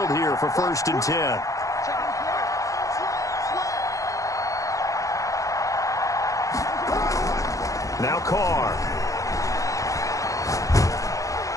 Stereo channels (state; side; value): late; right; 0.16 ms